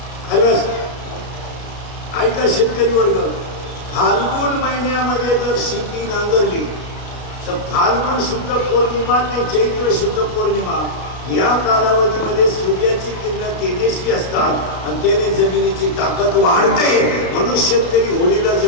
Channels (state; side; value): late; right; 33 ms